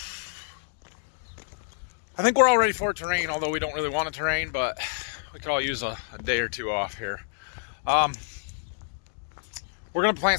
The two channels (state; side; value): silent; right; digital silence